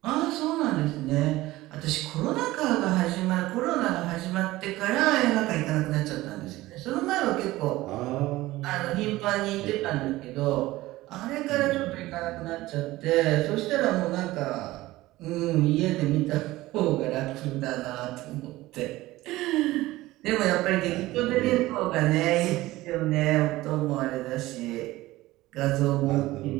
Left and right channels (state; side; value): quieter; left; 17.8 dB